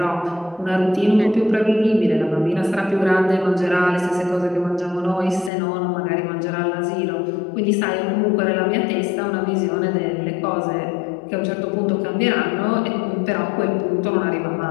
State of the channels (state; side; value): drops out; right; at 5.5 s